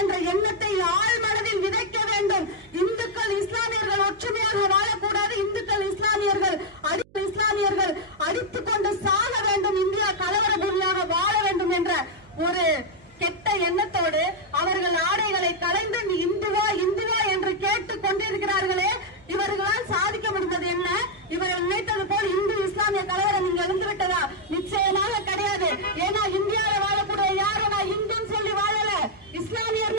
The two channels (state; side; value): noise; right; hum, 27 dB below the sound